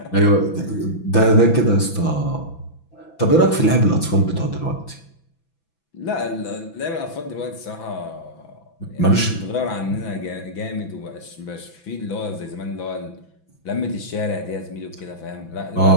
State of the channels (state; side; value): late; right; 6.0 ms